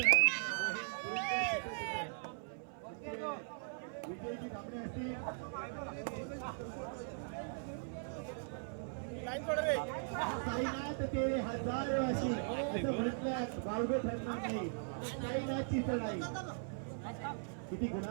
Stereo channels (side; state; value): left; silent; 52 dB below the other